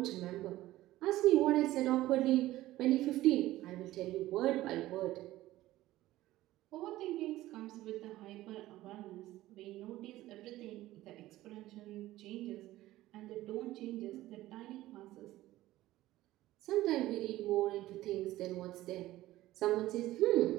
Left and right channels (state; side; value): quieter; left; 16.0 dB